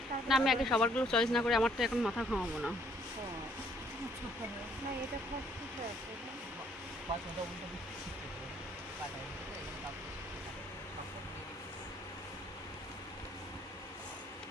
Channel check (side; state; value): both; normal; correlation 0.65